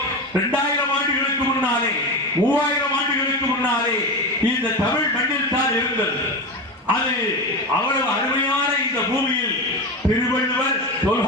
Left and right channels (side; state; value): both; normal; correlation 0.21